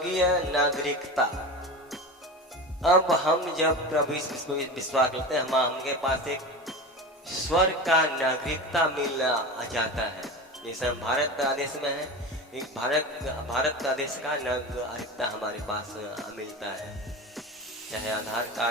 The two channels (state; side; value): normal; both; correlation 0.28